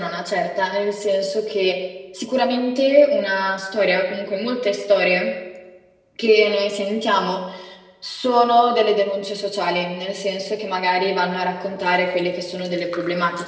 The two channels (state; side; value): identical; both; correlation 1.00